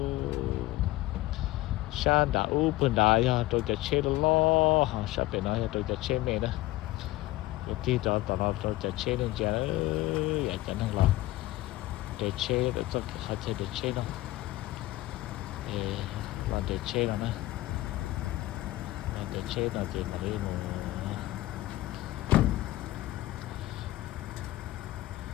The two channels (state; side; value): quieter; right; 17.6 dB